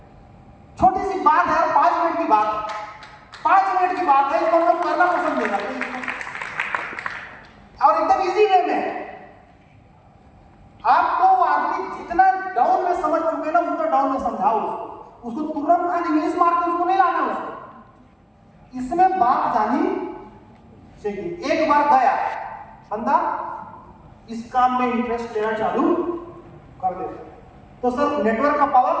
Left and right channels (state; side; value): identical; both; correlation 1.00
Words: छोटी सी बात है, 5 मिनट की बात, 5 मिनट की बात है, इसको हम करना पसंद नहीं करते और एकदम इजी वे में। आपको आदमी जितना डाउन में समझ चुके ना उतना डाउन में समझाओ उसको तुरंत खाली इंग्लिश मार के उसको नहीं लाना उसको। इसमें बात जानी चाहिए। एक बार गया बंदा इस काम में इंटरेस्ट लेना चालू कर दे तो सर नेटवर्क का पावर।